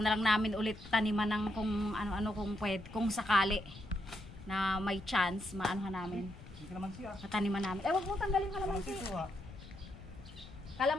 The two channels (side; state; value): left; noise; rumble, 17 dB below the sound